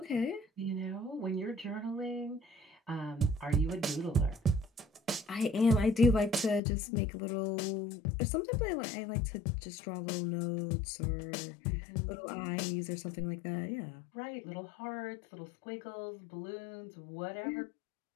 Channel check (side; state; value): right; drops out; at 6.6 s